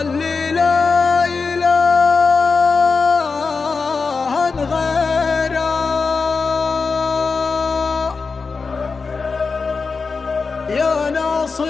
اللي لا إله غيره، يا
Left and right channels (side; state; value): right; quieter; 4.6 dB